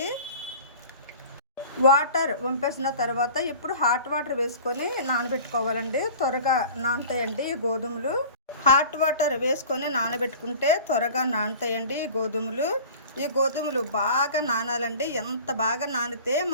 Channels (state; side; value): inverted; both; correlation -0.42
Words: వాటర్ వంపేసిన తర్వాత ఇప్పుడు హాట్ వాటర్ వేసుకొని నానబెట్టుకోవాలండి. త్వరగా నానతాయండి ఈ గోధుమలు. హాట్ వాటర్ వేసుకొని నానబెట్టుకుంటే త్వరగా నానతాయండి ఈ గోధుమలు బాగా నానాలండి. ఎంత బాగా నానితే